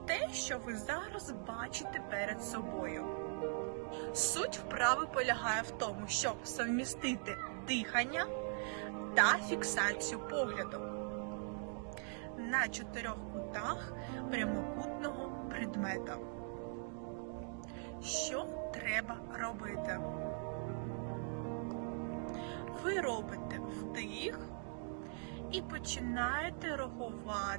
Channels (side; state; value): left; silent; 50 dB below the other